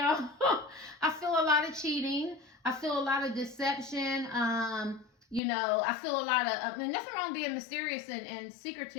I feel a lot of cheating. I feel a lot of deception. I feel a lot of, nothing wrong being mysterious and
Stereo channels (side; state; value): right; drops out; at 5.4 s